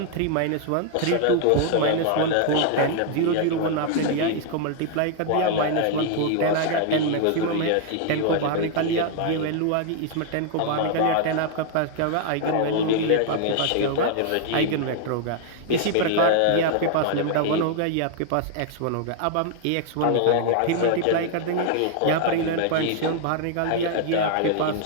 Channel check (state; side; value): different; both; correlation 0.00